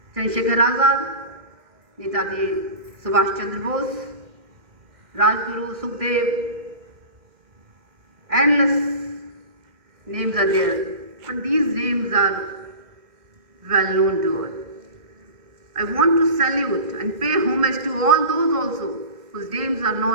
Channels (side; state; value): left; late; 2.1 ms